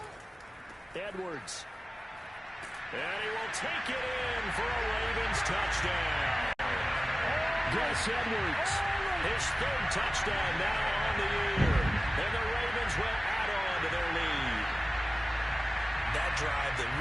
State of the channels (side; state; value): both; normal; correlation 0.97